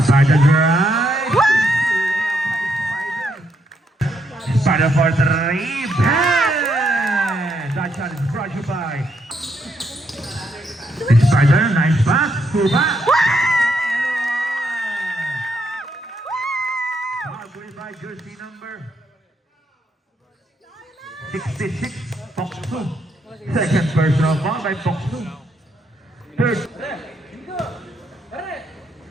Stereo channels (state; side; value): normal; both; correlation 0.76